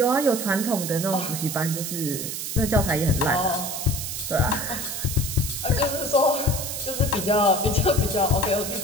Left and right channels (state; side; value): noise; right; hiss, 5 dB below the sound